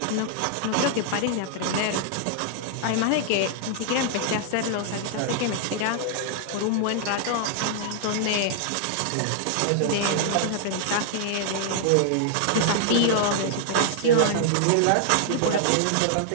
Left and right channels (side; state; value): both; different; correlation -0.01